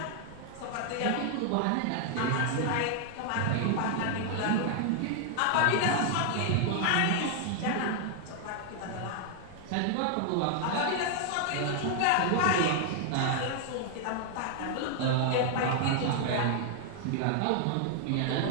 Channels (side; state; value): both; different; correlation 0.00